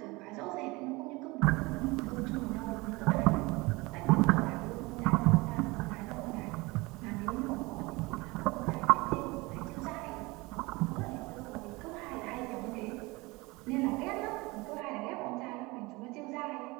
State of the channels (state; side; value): quieter; left; 23.6 dB